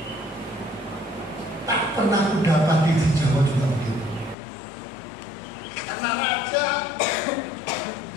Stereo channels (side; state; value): right; drops out; at 4.4 s